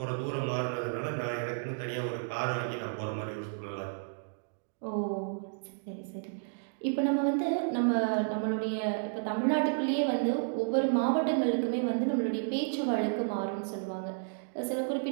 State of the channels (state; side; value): silent; left; digital silence